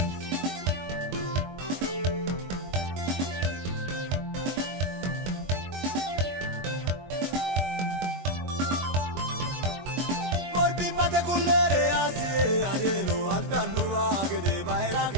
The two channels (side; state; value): left; late; 22 ms